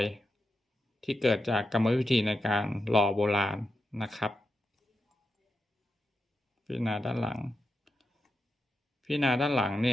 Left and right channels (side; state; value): both; normal; correlation 0.87